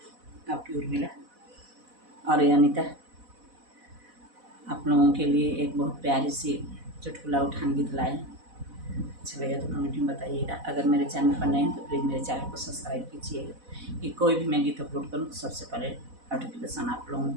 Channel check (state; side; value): late; left; 4.1 ms